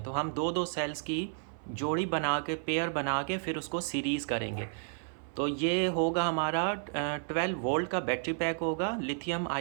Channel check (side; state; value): left; silent; 56 dB below the other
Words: तो हम दो दो सेल्स की जोड़ी बना के, पेयर बना के फिर उसको सीरीज़ करेंगे। तो ये होगा हमारा 12 वोल्ट का बैटरी पैक होगा, लिथियम